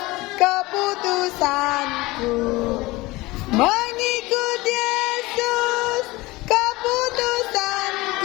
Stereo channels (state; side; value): quieter; right; 21.0 dB